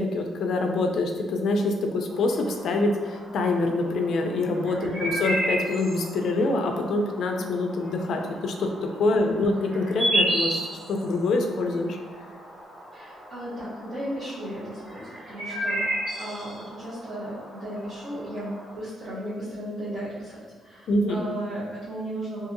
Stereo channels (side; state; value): both; normal; correlation 0.74